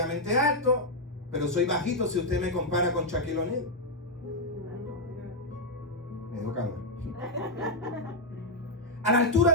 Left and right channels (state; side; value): normal; both; correlation -0.01